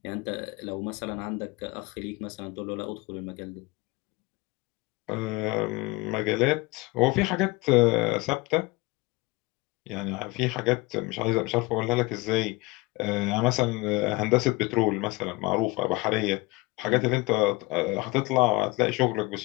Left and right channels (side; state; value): right; quieter; 23.1 dB